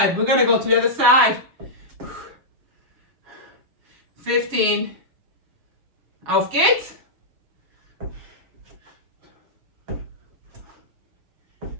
We're going to go to the other side. 15. Auf geht's.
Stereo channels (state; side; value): late; left; 7.2 ms